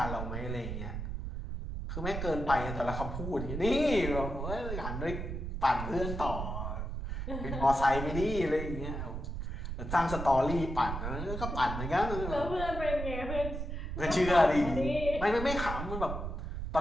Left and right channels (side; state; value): right; noise; rumble, 5 dB below the sound